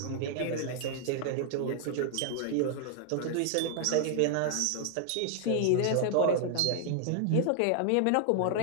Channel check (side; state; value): both; different; correlation -0.01